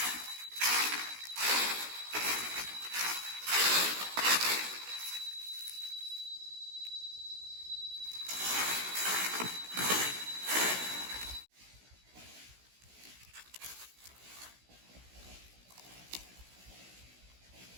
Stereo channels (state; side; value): late; left; 16 ms